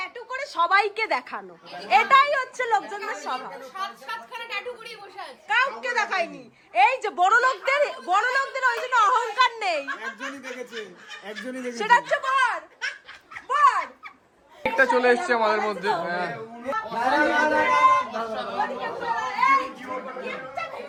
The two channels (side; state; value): both; identical; correlation 1.00